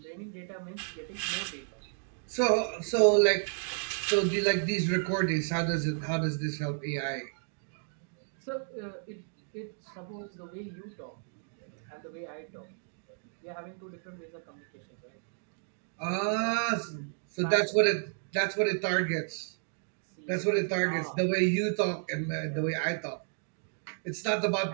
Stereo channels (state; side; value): silent; left; 56 dB below the other